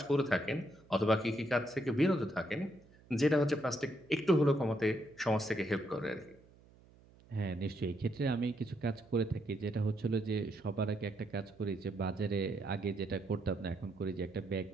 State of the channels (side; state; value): right; noise; hum, 26 dB below the sound